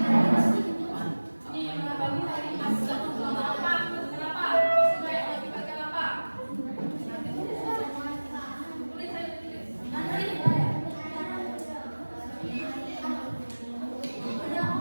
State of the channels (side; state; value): both; inverted; correlation -1.00